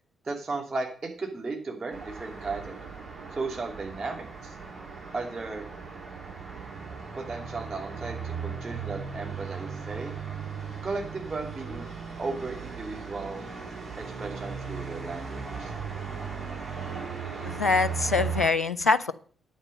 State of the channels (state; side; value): normal; both; correlation 0.66